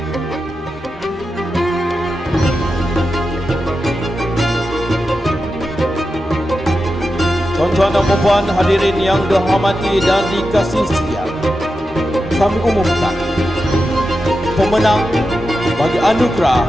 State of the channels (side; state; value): both; normal; correlation 0.90